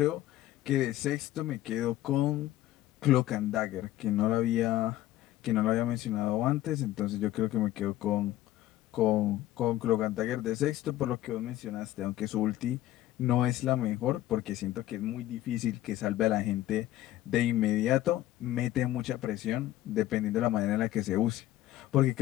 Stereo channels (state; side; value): quieter; right; 14.4 dB